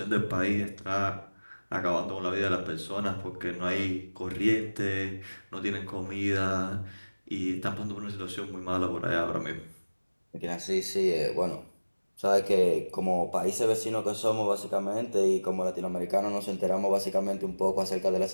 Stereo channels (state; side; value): inverted; both; correlation -1.00